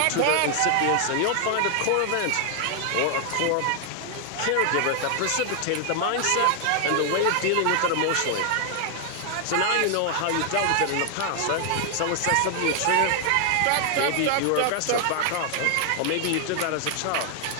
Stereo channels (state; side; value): different; both; correlation 0.00